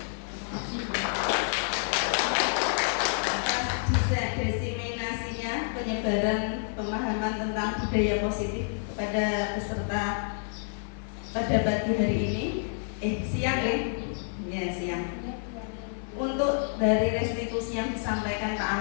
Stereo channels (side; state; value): right; silent; 57 dB below the other